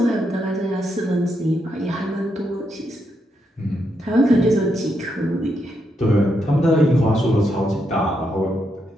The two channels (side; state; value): both; normal; correlation 0.80